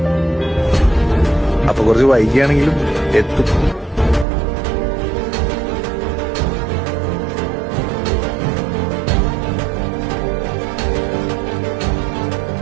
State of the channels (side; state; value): left; drops out; at 4.2 s